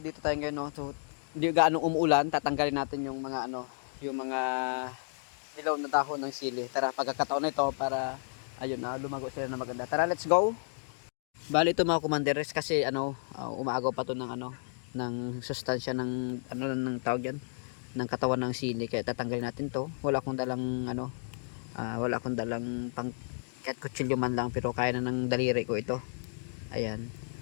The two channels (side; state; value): right; silent; digital silence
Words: tayo ngayon, no. So hindi gaano umuulan, tatanggalin natin yung mga yung mga dilaw na dahon ng sili. Tara, pagkakataon na ito para ayun na lumago sila na maganda. Tara, let's go. Bali ito mga commanderes kasi umaagaw pa to ng ng sustansya ng ng tawag yan, ng katawan ng sili, kaya tatanggalin natin to. Wala akong dalang wala akong dalang pang kahit kutsilyo man lang, pero kaya na ng daliri ko ito. Ayan.